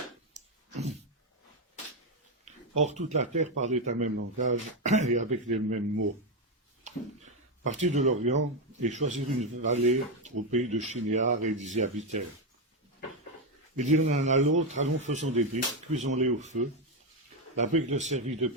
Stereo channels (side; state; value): both; normal; correlation 0.07